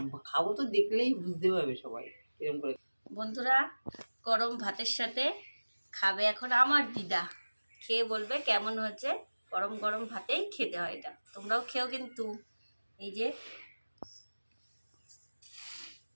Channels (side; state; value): both; inverted; correlation -1.00